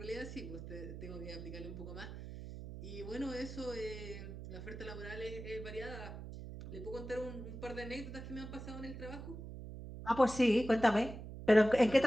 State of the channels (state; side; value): noise; right; hum, 10 dB below the sound